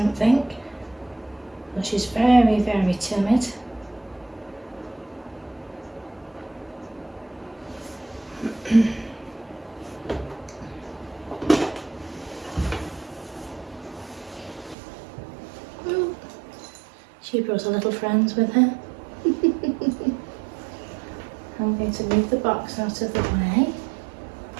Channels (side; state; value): left; drops out; at 14.8 s